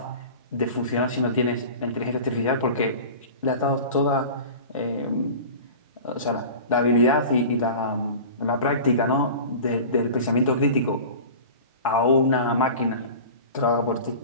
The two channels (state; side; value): inverted; both; correlation -0.36